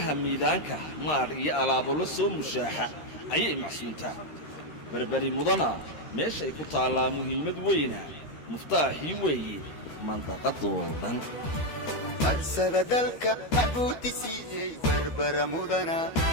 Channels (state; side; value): late; right; 13 ms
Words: miidaanka maadh iyo alaabo la soo mushaaxa ayay macsuuntaa berberi mudana meeshay ku taallaa muhiimad weyna muftaaxii weeye mandaqadoo dhan marsada dalka macbuudi siiyey berbera mudana